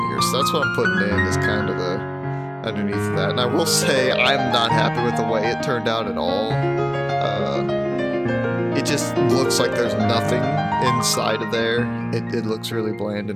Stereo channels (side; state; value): both; identical; correlation 1.00